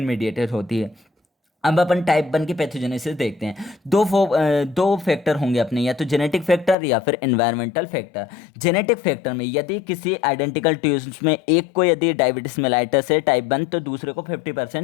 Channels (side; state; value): right; drops out; at 6.8 s